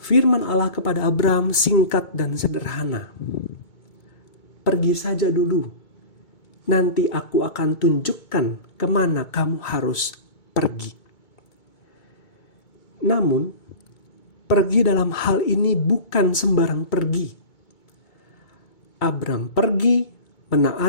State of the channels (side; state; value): right; late; 2.2 ms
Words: Firman Allah kepada Abram singkat dan sederhana. "Pergi saja dulu, nanti aku akan tunjukkan kemana kamu harus pergi. Namun, pergi dalam hal ini bukan sembarang pergi. Abram pergi